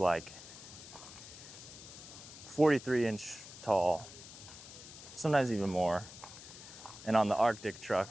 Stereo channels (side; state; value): left; noise; hiss, 15 dB below the sound